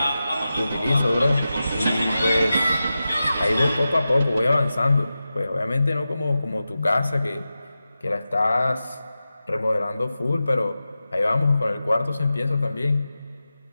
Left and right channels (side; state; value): both; inverted; correlation -0.93